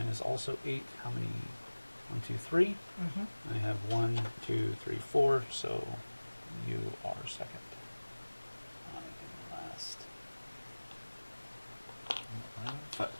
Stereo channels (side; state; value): both; inverted; correlation -1.00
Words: is also 8. How many? 1, 2, 3. Mm-hmm. I have 1, 2, 3, 4. So you are second. I am last. I'm